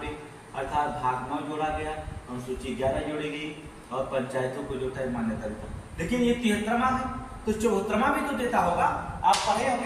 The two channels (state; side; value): identical; both; correlation 1.00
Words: अर्थात भाग 9 जोड़ा गया, अनुसूची 11 जोड़ी गई और पंचायतों को जो है मान्यता देता। लेकिन ये 73वां है तो 74वां भी तो देता होगा। आप पढ़े